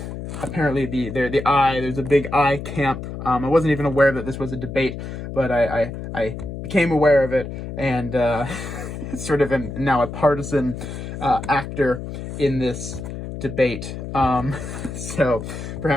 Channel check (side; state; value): left; noise; hum, 8 dB below the sound